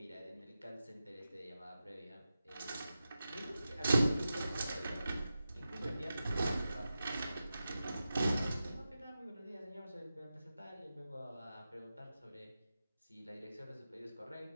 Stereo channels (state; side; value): inverted; both; correlation -0.92